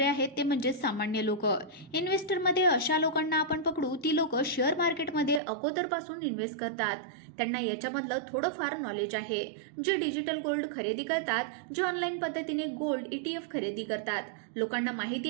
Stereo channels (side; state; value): left; drops out; at 5.4 s